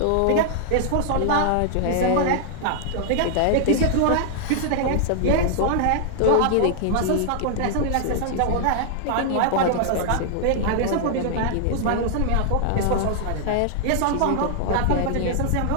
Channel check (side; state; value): both; different; correlation -0.01